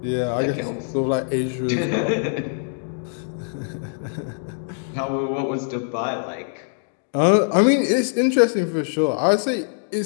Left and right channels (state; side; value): silent; right; digital silence